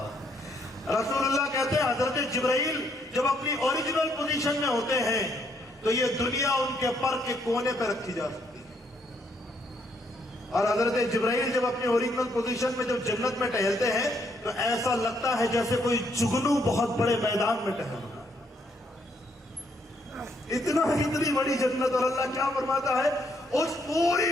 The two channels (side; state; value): both; normal; correlation 0.72